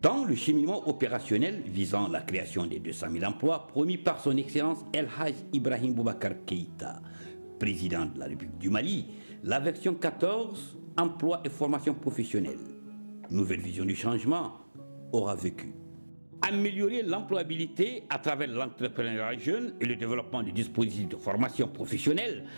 Dans le cheminement opérationnel visant la création des 200 000 emplois promis par son Excellence El Hadj Ibrahim Boubacar Keïta, président de la République du Mali, la version 14, emploi et formation professionnelle, nouvelle vision du changement, aura vécu. Améliorer l'employabilité à travers l'entrepreneuriat jeune et le développement des dispositifs de formation professionnelle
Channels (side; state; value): both; inverted; correlation -1.00